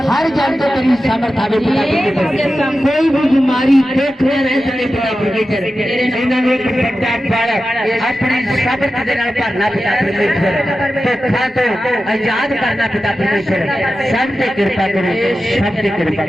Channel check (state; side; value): normal; both; correlation 0.93